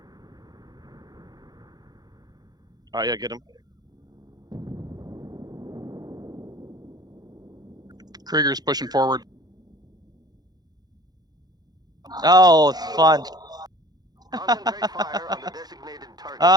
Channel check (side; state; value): left; late; 0.19 ms